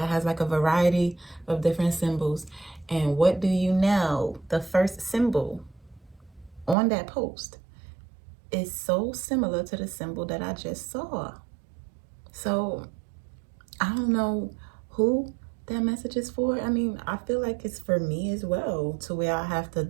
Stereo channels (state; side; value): drops out; left; at 6.8 s